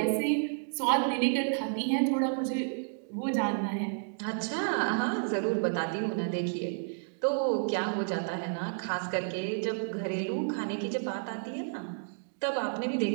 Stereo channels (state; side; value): silent; left; digital silence